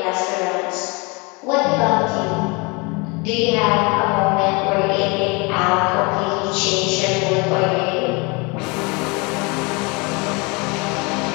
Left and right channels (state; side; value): quieter; right; 28.4 dB